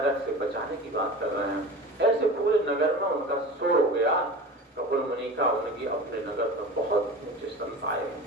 से बचाने की बात कर रहे हैं। ऐसे पूरे नगर में उनका शोर हो गया कपिल मुनि का, उनकी अपने नगर में बहुत ऊंचे संत आए।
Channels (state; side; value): normal; both; correlation 0.33